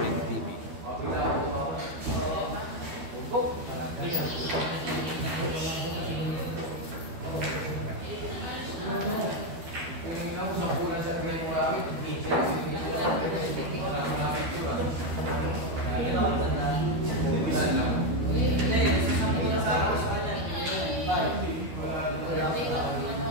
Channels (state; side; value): late; left; 12 ms